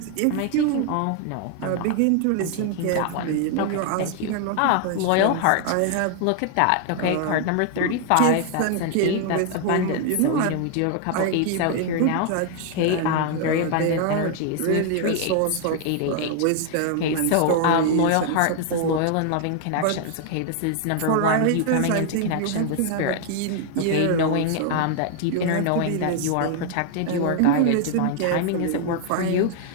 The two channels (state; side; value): different; both; correlation 0.00